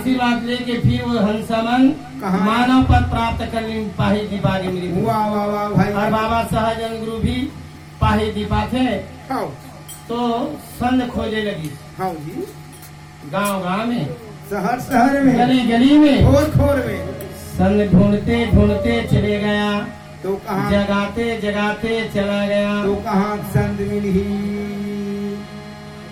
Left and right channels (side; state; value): both; identical; correlation 1.00